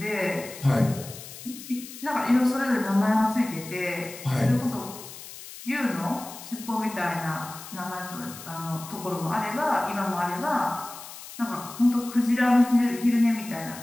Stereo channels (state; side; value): noise; left; hiss, 14 dB below the sound